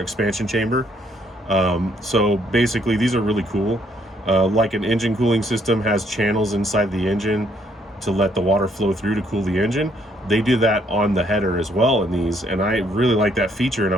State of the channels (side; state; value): both; normal; correlation 0.69